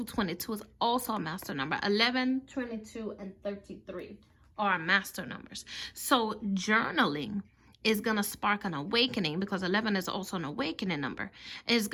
22 is also a master number. 11, 22, and 33 are master numbers. So journaling is going to spark an awakening, because 11 is also an awakening number. It's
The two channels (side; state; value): both; identical; correlation 1.00